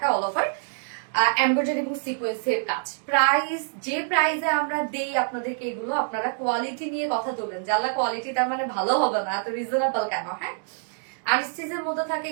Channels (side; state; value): left; silent; digital silence